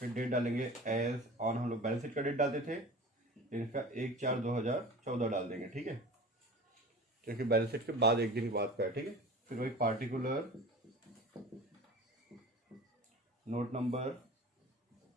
डेट डालेंगे एज ऑन, हम लोग बैलेंस शीट का डेट डालते थे, इसका 1/4/2014 डाल देंगे, ठीक है, क्योंकि बैलेंस शीट के बाद एक दिन बाद का है, ठीक है। फिर वही पार्टिकुलर नोट नंबर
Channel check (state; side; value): normal; both; correlation 0.38